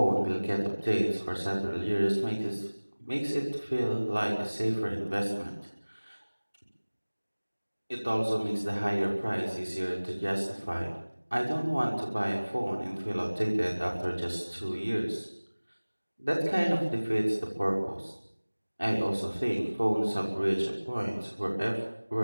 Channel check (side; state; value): both; inverted; correlation -1.00